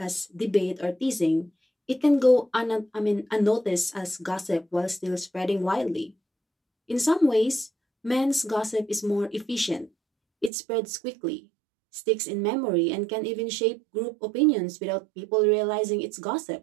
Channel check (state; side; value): drops out; left; at 10.5 s